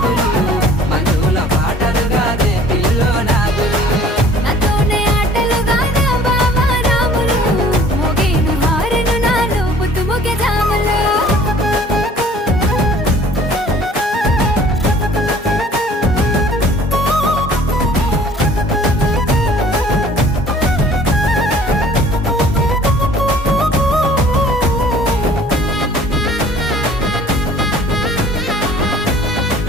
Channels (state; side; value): normal; both; correlation 0.52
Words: మంజుల పాటలు గాదే పిల్లో నాదులు నాతోనే ఆటలు గాదా బావా రాములు మోగేను హారను నాలో పొద్దుముకే జాములు